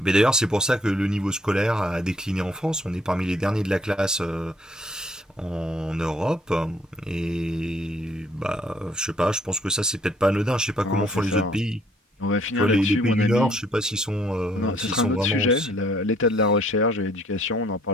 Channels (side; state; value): both; normal; correlation 0.63